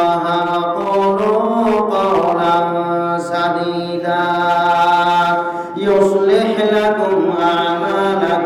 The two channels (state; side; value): identical; both; correlation 1.00